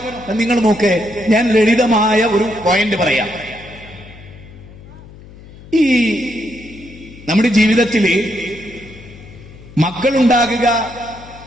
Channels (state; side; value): noise; left; hum, 19 dB below the sound